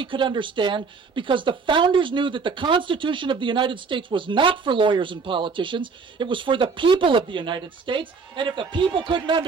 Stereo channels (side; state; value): left; quieter; 5.0 dB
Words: could understand, because the founders knew that the Constitution of the United States was not for lawyers and politicians. It was for the people of the United States, and if the people couldn't